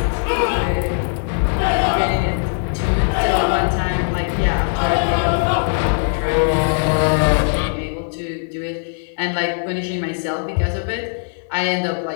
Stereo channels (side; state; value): right; silent; 59 dB below the other